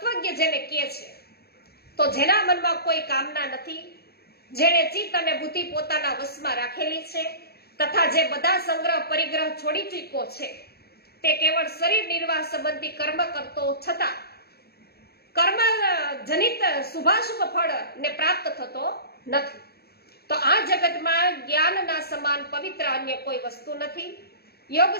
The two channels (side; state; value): right; late; 0.46 ms